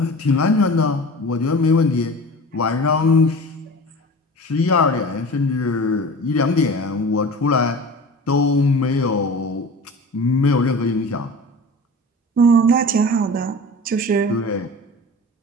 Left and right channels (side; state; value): both; normal; correlation 0.37